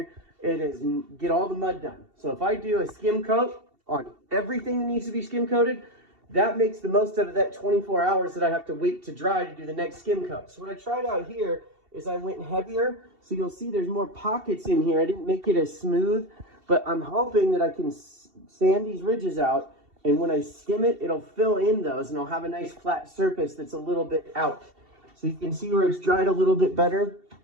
and get all the mud done. So if I do a skim coat on everything that needs to be skim coated, that makes the most out of that 24 hours that I have to wait to dry to do the next skim coat. So what I tried out here is I went heavier. So you'll see there's more pockets in here. I didn't make it as smooth, but I'm hoping that I can sand these ridges out, and when I skim it, it'll fill in those, and I'll have a nice flat surface that's a little bit out. So you can see where it's dried a little bit better.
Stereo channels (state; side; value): late; left; 2.7 ms